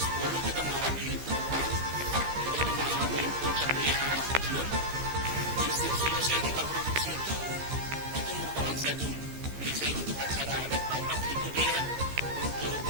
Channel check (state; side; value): late; left; 15 ms